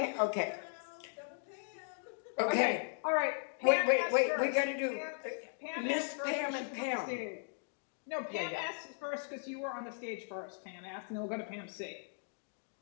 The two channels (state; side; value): silent; right; digital silence